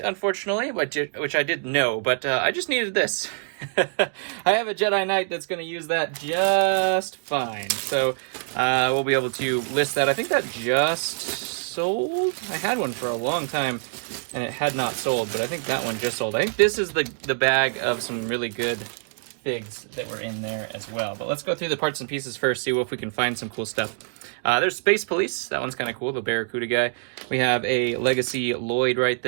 which I did know, but I just needed this. I have a Jedi Knight that's going to use that just fine. So we'll be able to list that. I think that just sold. I had one for a long time and it had not sold, but I think that one just sold. I think this is the bag of some really good figs that were in there as well. But let's go through the parts and pieces first, see if we can find some cool stuff. There's Space Police. That one's kind of cool, the Barracuda guy. We have a Legacy Lloyd right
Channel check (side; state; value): left; silent; 61 dB below the other